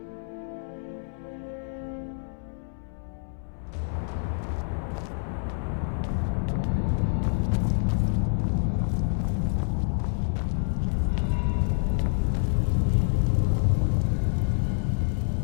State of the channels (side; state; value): right; silent; 60 dB below the other